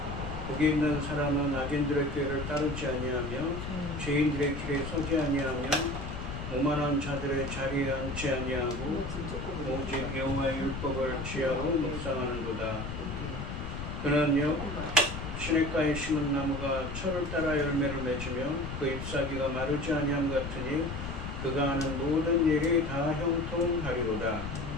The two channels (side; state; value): left; noise; rumble, 6 dB below the sound